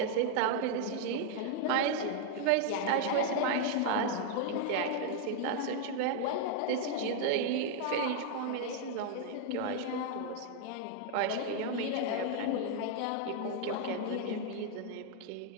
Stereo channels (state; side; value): different; both; correlation 0.00